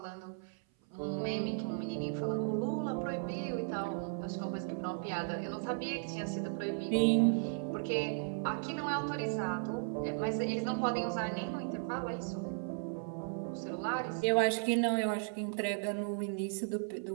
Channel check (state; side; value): silent; left; 54 dB below the other